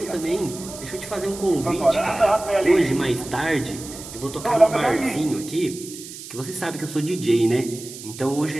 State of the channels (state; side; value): noise; right; hiss, 13 dB below the sound